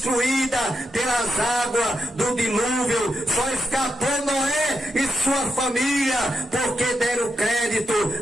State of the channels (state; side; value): normal; both; correlation 0.85